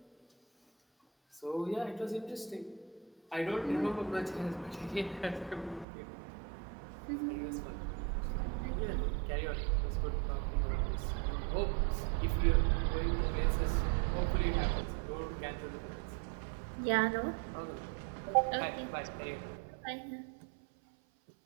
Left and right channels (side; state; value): left; drops out; at 5.9 s